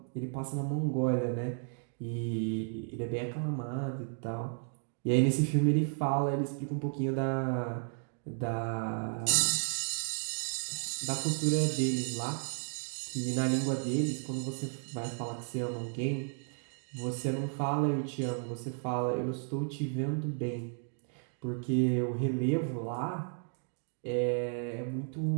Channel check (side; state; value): left; silent; 55 dB below the other